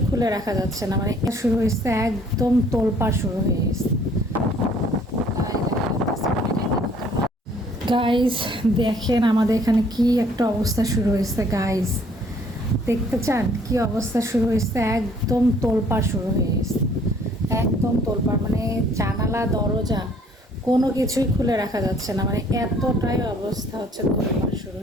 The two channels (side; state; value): both; normal; correlation 0.59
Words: খুলে রাখা যাচ্ছে না, মানে শুরু হয়েছে একদম তোলপাড় শুরু হয়ে গেছে। গাইস দেখেন আমাদের এখানে কি একটা অবস্থা শুরু হয়েছে। গাইস দেখতে চান কি অবস্থা শুরু হয়েছে? একদম তোলপাড় শুরু হয়ে গেছে, একদম তোলপাড়, মানে জানালা দরজা কোনো কিছুই খুলে রাখা যাচ্ছে না, মানে এতটাই অবস্থা হচ্ছে, তোলপাড় শুরু